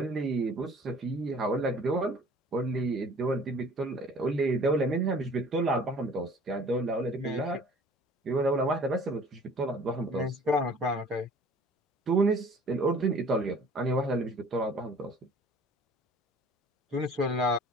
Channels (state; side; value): normal; both; correlation 0.51